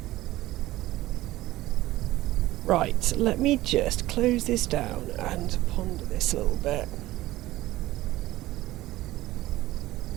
Right, let me just close this down and ponder this a little bit.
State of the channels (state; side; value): quieter; left; 16.8 dB